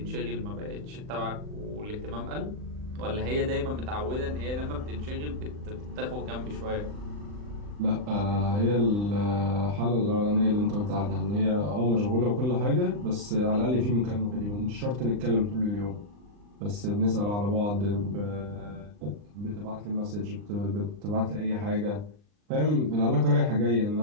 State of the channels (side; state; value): left; late; 39 ms